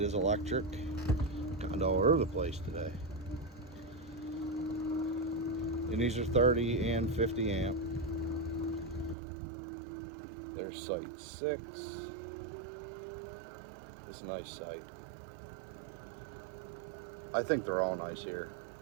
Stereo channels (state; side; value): drops out; left; at 9.2 s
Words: electric. Kind of all over the place today. And these are 30 and 50 amp. There's site 6. It's a nice site. I think they're all nice here,